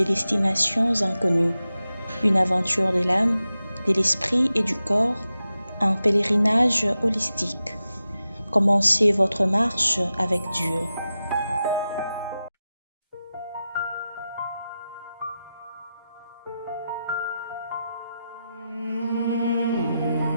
destinations inconnues. Une aventure de l'âme, de l'esprit et du corps, un pèlerinage holistique. Commencez votre marche avec Dieu.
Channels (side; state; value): both; inverted; correlation -0.92